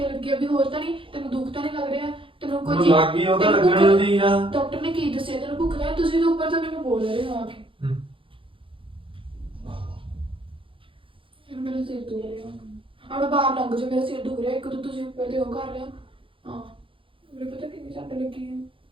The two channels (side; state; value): left; late; 0.25 ms